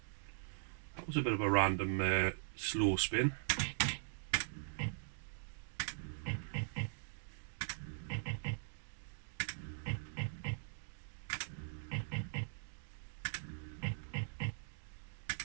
That was a bit of a random slow spin.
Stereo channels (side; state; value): left; silent; digital silence